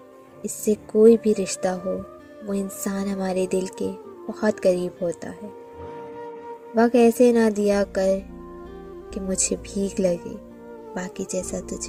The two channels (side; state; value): both; identical; correlation 1.00